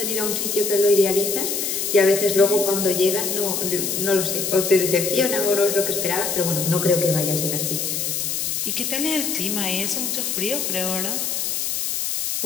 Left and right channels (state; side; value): noise; left; hiss, 1 dB below the sound